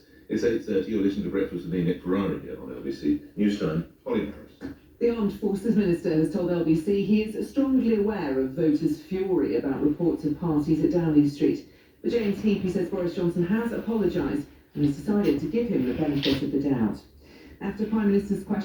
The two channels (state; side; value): identical; both; correlation 1.00